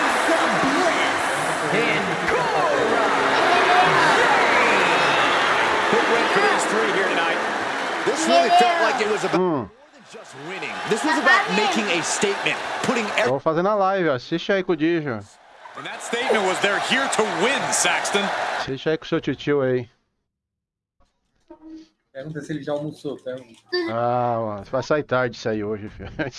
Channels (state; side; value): identical; both; correlation 1.00